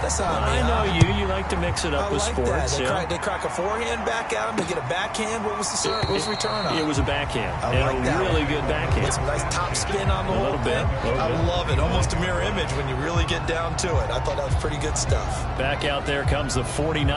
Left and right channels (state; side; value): identical; both; correlation 1.00